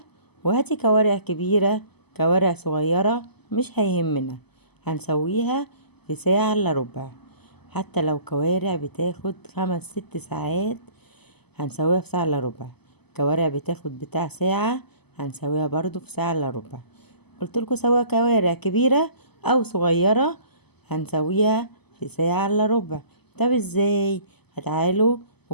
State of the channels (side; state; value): right; late; 0.98 ms